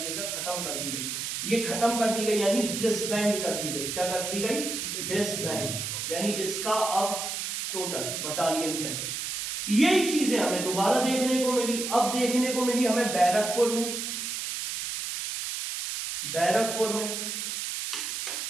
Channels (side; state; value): right; noise; hiss, 4 dB below the sound